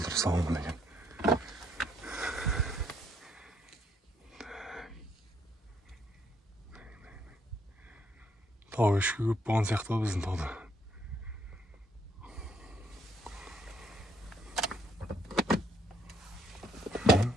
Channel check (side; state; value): both; normal; correlation 0.70